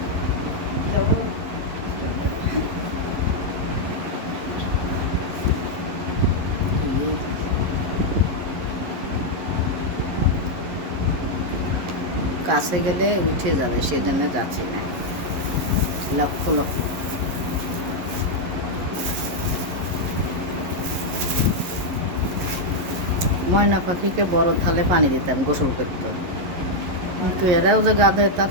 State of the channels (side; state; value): left; late; 11 ms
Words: কাছে গেলে উঠে যাবে, সেই জন্য যাচ্ছি না। লক্ষ লক্ষ ময়না পাখিকে বড় থালে পানি দিতাম, গোসল করতো। কিন্তু এরাও যে গাধে তা